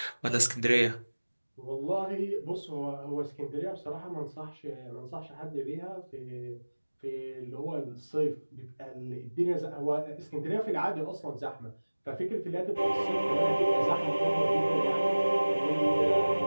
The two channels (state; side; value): inverted; both; correlation -1.00